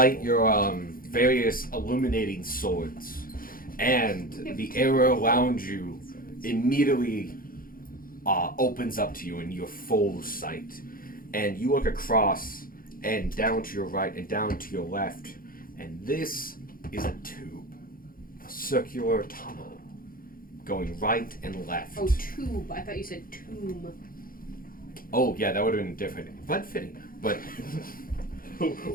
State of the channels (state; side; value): late; right; 0.41 ms